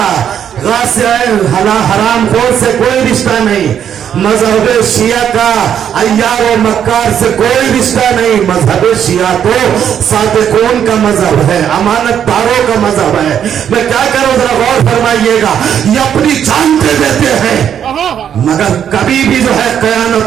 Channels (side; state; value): left; quieter; 9.0 dB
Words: غاصب حرام خور سے کوئی رشتہ نہیں، مذہب شیعہ کا عیار و مکار سے کوئی رشتہ نہیں۔ مذہب شیعہ تو صادقون کا مذہب ہے، امانت داروں کا مذہب ہے۔ میں کیا کروں، ذرا غور فرمائیے گا، یہ اپنی جان دے دیتے ہیں مگر کبھی بھی جو ہے